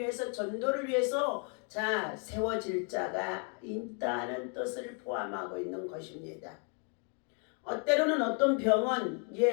전도를 위해서 세워질 자가 있다는 뜻을 포함하고 있는 것입니다. 때로는 어떤 병은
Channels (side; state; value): right; quieter; 37.7 dB